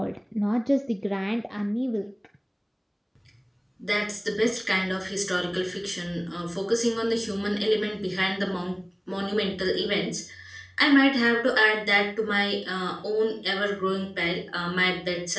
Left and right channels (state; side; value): identical; both; correlation 1.00